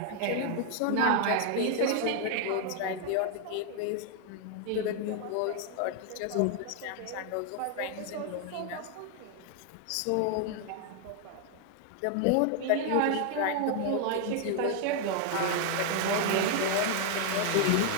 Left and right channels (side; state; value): both; different; correlation 0.00